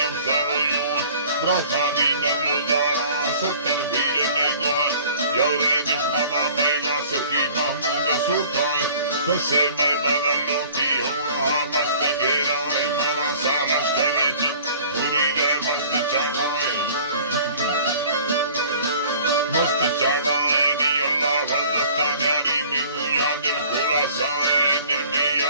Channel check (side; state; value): both; inverted; correlation -0.49